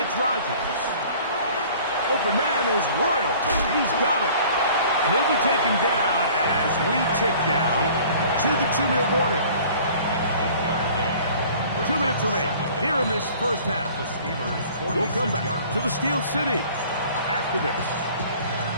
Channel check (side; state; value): both; inverted; correlation -0.49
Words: Rodgers. Open man is Royal. He's got it. And he'll be taken down as we tick down to the 2-minute warning. 2 minutes remain here in this first half. We'll come back to the Steel City after this.